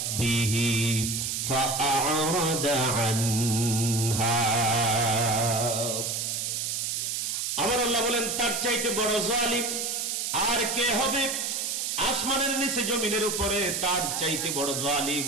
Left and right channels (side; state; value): right; noise; hiss, 1 dB below the sound